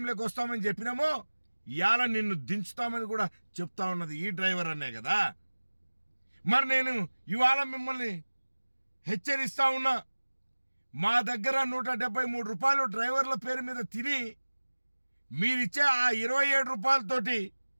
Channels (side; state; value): both; inverted; correlation -1.00